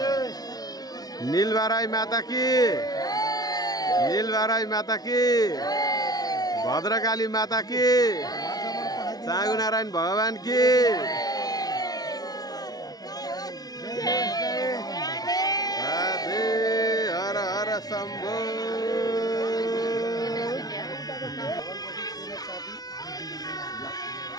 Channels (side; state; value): right; late; 0.19 ms